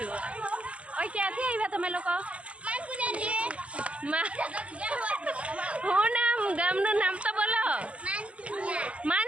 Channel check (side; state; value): left; late; 0.061 ms